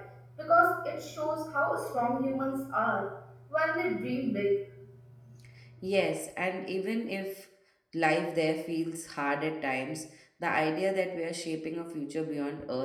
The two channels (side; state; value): both; identical; correlation 1.00